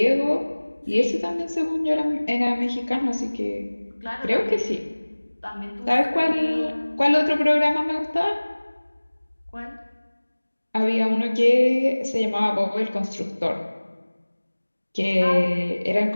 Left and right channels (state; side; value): inverted; both; correlation -1.00